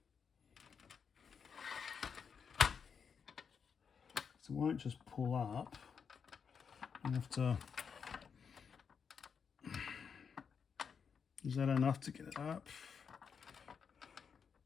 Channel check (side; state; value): right; quieter; 6.5 dB